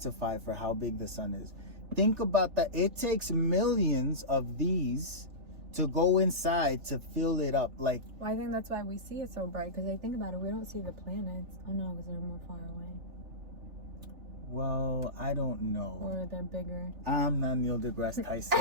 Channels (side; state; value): left; late; 3.4 ms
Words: for how big the sun is. Think about that. It takes millions of these to go inside to fill it up. Like, well, I think that's why we see it so bright, because I think about it, we don't see the planets. Oh no, because they're more far away. well, I don't know. Or they're bigger. I'm not Neil deGrasse Tyson.